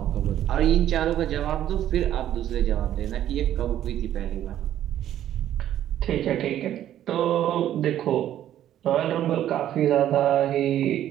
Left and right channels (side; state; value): left; quieter; 11.7 dB